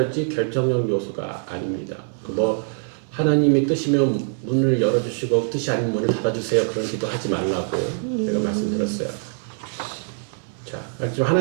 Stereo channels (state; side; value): silent; left; 63 dB below the other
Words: 결정적 요소가 아닙니다. 뭐 하나님의 뜻이면 문을 열어주시고 뜻이 아닌 문을 닫아주세요. 그런 기도 하지 말라고 제가 말씀드렸어요. 자, 지금